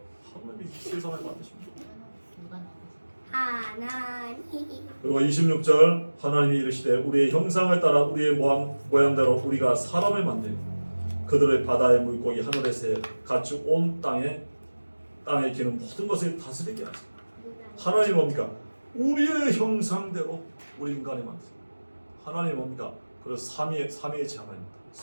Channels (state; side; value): inverted; both; correlation -1.00